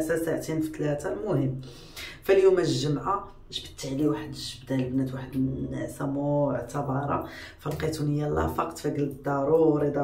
ساعتين في 3. المهم فاليوم الجمعه جبت عليه واحد الجبده البنات، واحد النعسه معتبره، فلقيتوني يلاه فقت، فقلت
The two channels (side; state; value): both; identical; correlation 1.00